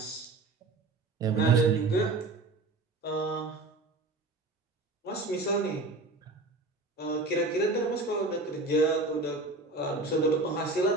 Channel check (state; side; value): quieter; left; 3.2 dB